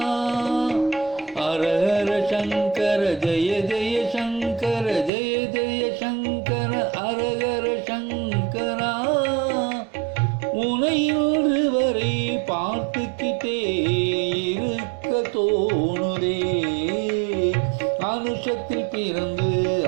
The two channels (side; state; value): left; drops out; at 5.1 s